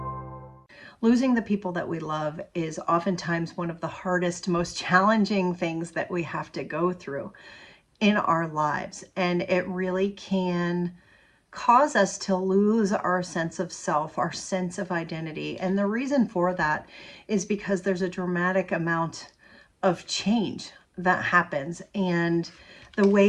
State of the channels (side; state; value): both; identical; correlation 1.00